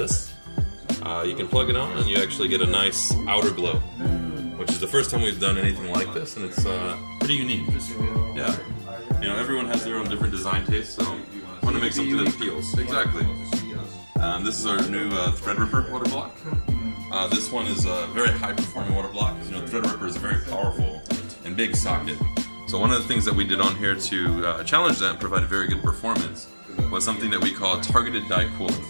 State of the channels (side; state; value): both; inverted; correlation -1.00